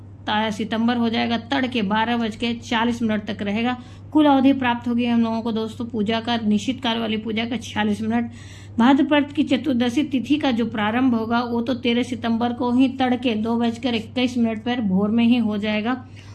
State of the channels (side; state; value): both; identical; correlation 1.00